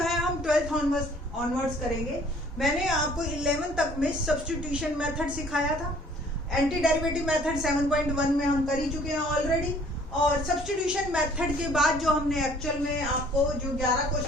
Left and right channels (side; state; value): both; normal; correlation 0.56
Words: हम 12th ऑनवर्ड्स करेंगे। मैंने आपको 11 तक में सब्स्टिट्यूशन मेथड सिखाया था। एंटी डेरिवेटिव मेथड 7.1 में हम कर ही चुके हैं ऑलरेडी और सब्स्टिट्यूशन मेथड के बाद जो हमने एक्चुअल में आपको जो 11